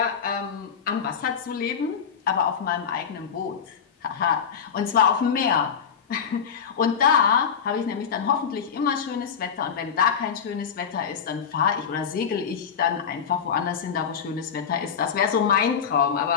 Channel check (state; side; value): quieter; right; 7.1 dB